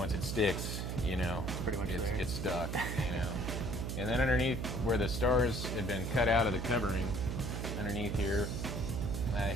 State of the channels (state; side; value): noise; right; hum, 3 dB below the sound